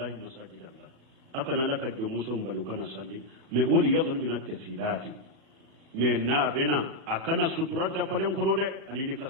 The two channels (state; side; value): late; left; 37 ms